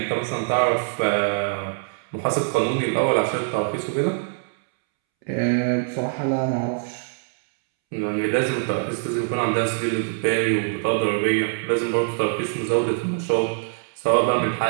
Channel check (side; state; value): left; silent; 63 dB below the other